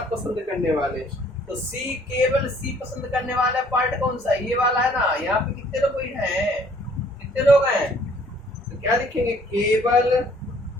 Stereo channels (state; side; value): normal; both; correlation 0.59